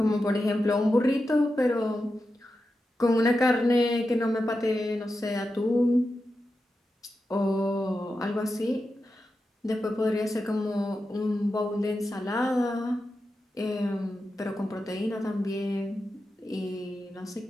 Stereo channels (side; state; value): both; normal; correlation 0.90